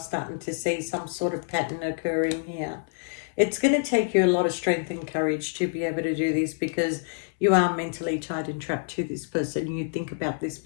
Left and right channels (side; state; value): right; silent; 60 dB below the other